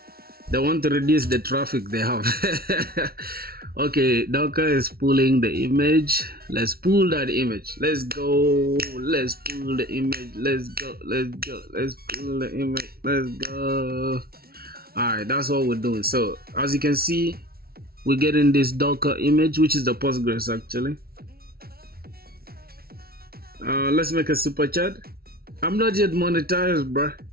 They want to reduce the traffic they have. Okay, Docker is pulling the image. Let's pull that image. Let's go. Let's pull the image. Let's go. Let's go. Let's pull the image. Let's go. Alright, that's what we're doing. So as you can see, we're getting this Docker image, which is the Postgres actually. Let's make a super chat. I'm not yet monetized, bruh.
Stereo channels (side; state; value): left; late; 0.44 ms